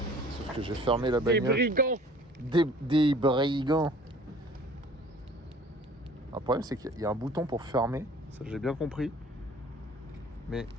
Sauf que j'ai fermé la Des bagnole. brigands. Des brigands. Le problème c'est qu'il y a un bouton pour fermer, ça j'ai bien compris. Mais...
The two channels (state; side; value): normal; both; correlation 0.50